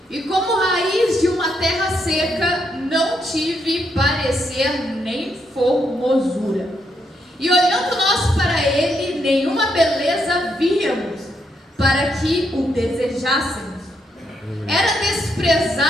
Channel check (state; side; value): normal; both; correlation 0.78